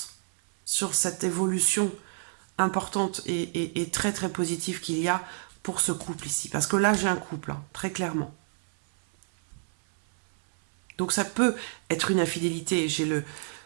sur cette évolution importante et très très positive qu'il y a pour ce couple ici. Parce que là, j'ai un couple, hein, très clairement. Donc ça peut être une infidélité. J'ai le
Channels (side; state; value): left; silent; 59 dB below the other